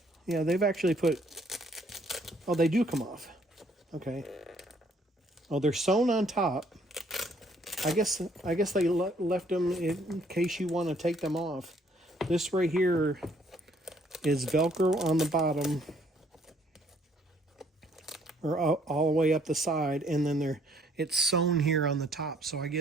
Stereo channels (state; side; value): normal; both; correlation 0.64